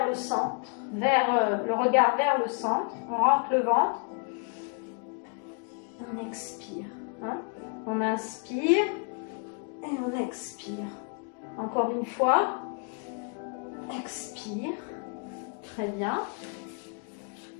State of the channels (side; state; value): right; quieter; 39.2 dB